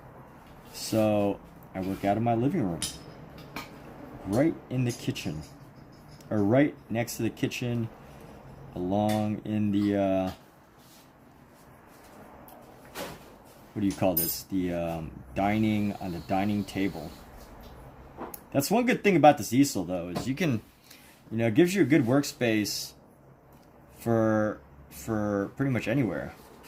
so I work out of my living room, right in the kitchen, or right next to the kitchen, along in the what do you call this? The dining on the dining table. That's one good thing about this easel, though, is you can, it gives you a good workspace for pretty much anywhere.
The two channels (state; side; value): identical; both; correlation 1.00